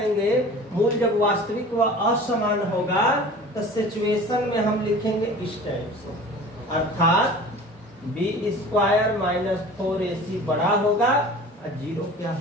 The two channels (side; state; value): both; normal; correlation 0.41